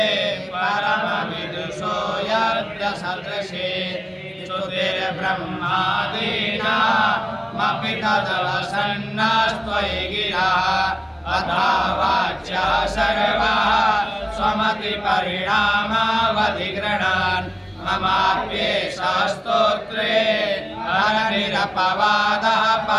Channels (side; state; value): both; identical; correlation 1.00